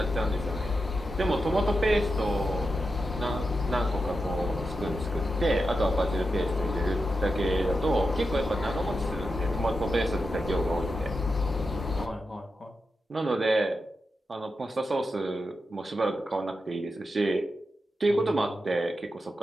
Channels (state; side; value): normal; both; correlation 0.88